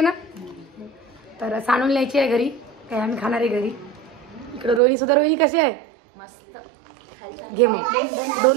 ना. तर सांडून न्यायची आहे घरी, काय आम्ही खाणार आहे घरी. इकडे रोहिणी सुद्धा. रोहिणी कशी आहे? मस्त. घे मग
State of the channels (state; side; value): drops out; left; at 4.8 s